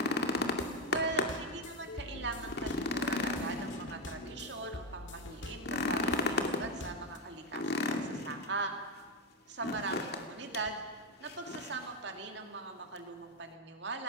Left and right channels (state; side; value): normal; both; correlation 0.10